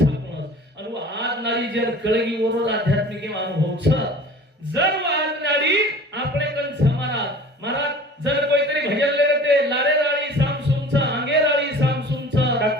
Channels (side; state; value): both; normal; correlation 0.43